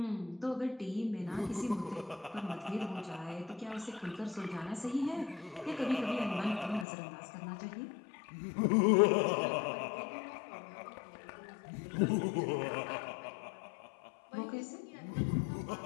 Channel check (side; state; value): right; drops out; at 6.9 s